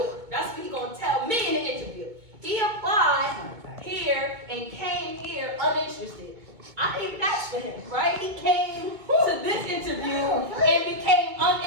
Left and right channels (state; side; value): late; left; 2.2 ms